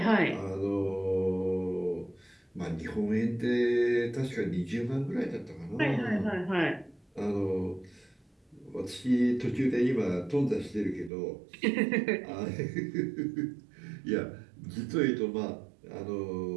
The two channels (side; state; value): left; drops out; at 11.1 s